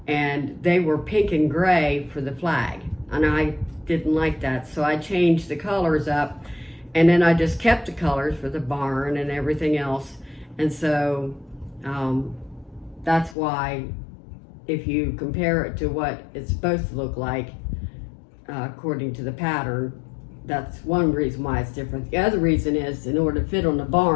and they were pink and gray for the flag, and I didn't like that, so I changed the colors up, and then I just kept the colors for the barn and everything else. And so that's why, if you compare it to what it's supposed to look like according to the pattern, that's one reason why it's different. The other reason is, in order to fit on the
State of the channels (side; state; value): right; drops out; at 13.4 s